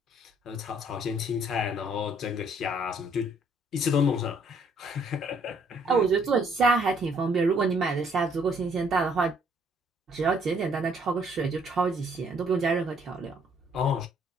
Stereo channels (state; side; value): normal; both; correlation 0.65